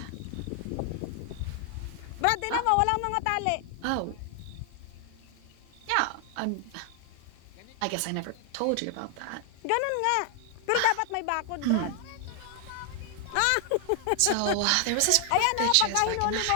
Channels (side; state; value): both; different; correlation 0.00